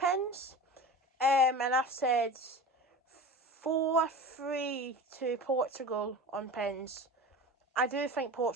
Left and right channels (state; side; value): normal; both; correlation 0.33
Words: And I've said 4-3 to Portugal on pens. I do think